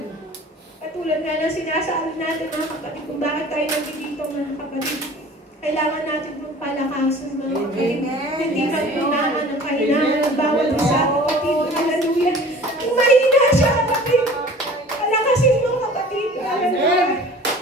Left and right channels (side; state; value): both; normal; correlation 0.45